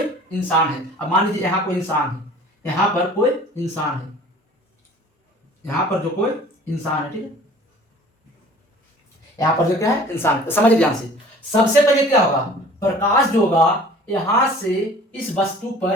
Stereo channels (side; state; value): both; normal; correlation 0.48